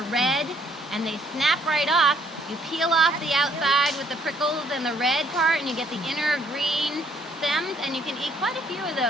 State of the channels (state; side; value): normal; both; correlation 0.65